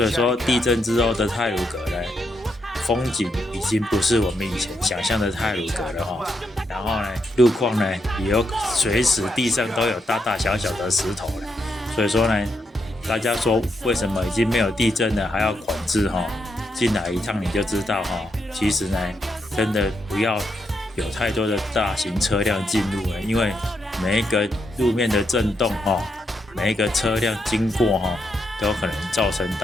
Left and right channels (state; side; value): normal; both; correlation 0.80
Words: 以说地震之后的太鲁阁呢，风景已经不是我们以前想象的太鲁阁了哈。然后呢，路况呢也有随时地上都有大大小小的石头了。所以说呢，大家说为什么已经没有地震了还要管制哈？进来一趟你就知道哈。其实呢，真的不要有太多的大型车辆进入了，因为每一个路面的震动哈，每一个车辆经过哈，都有可能造成